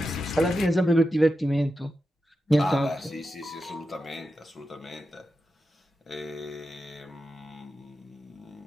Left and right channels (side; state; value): both; normal; correlation 0.90